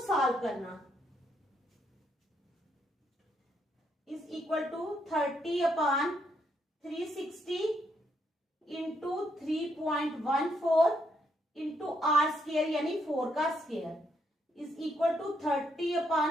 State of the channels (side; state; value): both; normal; correlation 0.75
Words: करना। Is equal to 30 upon 360 into 3.14 into r square यानी 4 का square is equal to 30